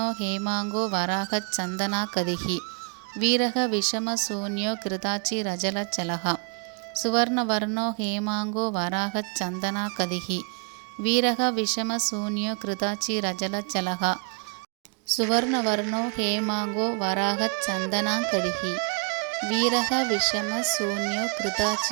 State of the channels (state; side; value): quieter; left; 39.1 dB